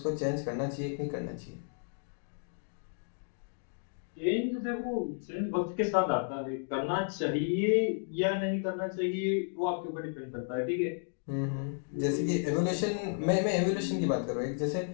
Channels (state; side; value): silent; right; digital silence